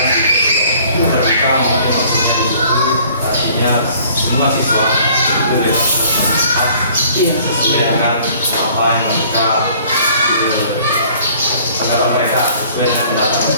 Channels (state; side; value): inverted; both; correlation -0.54